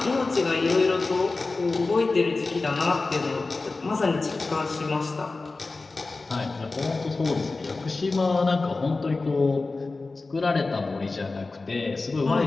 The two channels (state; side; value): quieter; right; 3.6 dB